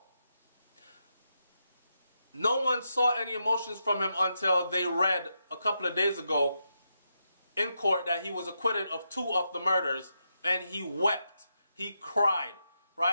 No one saw any emotions from him until they read a couple of days ago in court that he was acquitted of 2 of the murders, and he wept, he cried,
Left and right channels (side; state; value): both; inverted; correlation -0.84